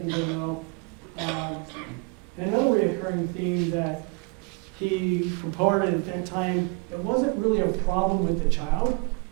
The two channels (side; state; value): left; quieter; 30.0 dB